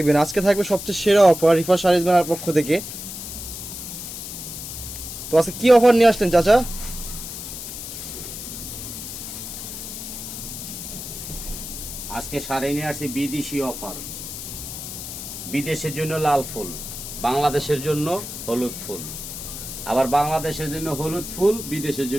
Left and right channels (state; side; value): noise; left; hiss, 9 dB below the sound